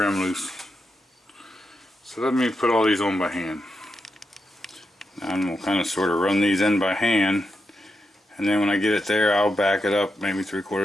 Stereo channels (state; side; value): normal; both; correlation 0.86